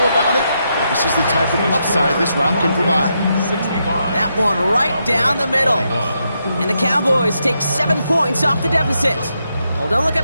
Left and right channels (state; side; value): inverted; both; correlation -0.82